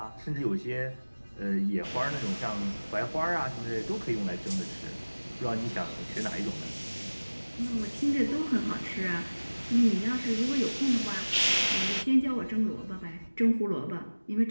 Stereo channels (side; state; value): both; inverted; correlation -1.00